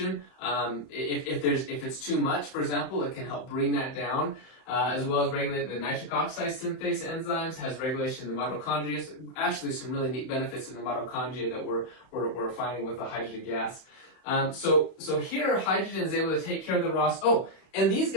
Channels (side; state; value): right; late; 31 ms